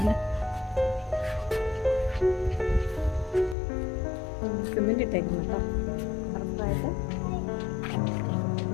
സിമെന്റ് ഇട്ടേക്കുന്നുണ്ടോ കറക്റ്റായിട്ട്?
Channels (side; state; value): right; drops out; at 3.6 s